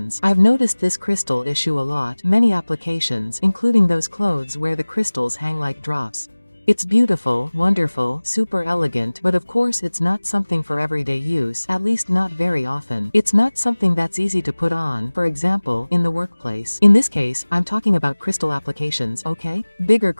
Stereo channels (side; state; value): both; inverted; correlation -1.00